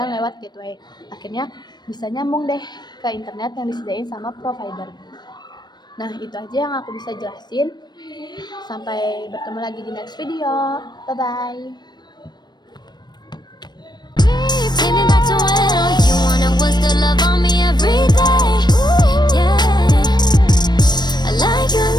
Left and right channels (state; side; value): late; right; 0.21 ms